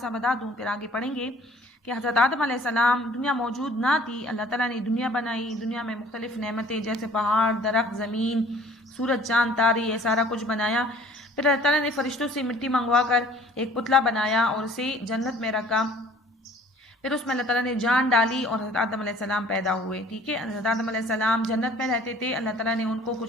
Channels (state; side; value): normal; both; correlation 0.52